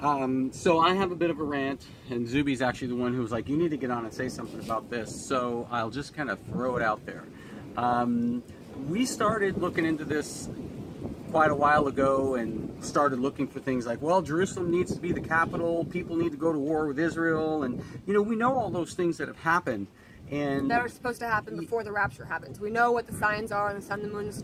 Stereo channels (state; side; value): identical; both; correlation 1.00